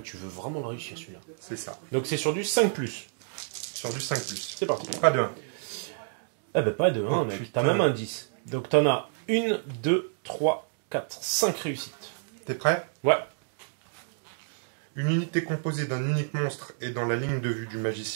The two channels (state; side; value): silent; left; digital silence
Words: tu veux vraiment le réussir celui-là. C'est ça. Donc c'est sur du 5+. Sur du 5+. C'est parti. Pas de 1. Eh ben pas de 1, Oh, mec. putain. T'as même un 10. Donc t'en as 1, 2, 3, 4, 5 réussites. T'es prêt? Ouais. Une unité composée d'un unique monstre et dans la ligne de vue du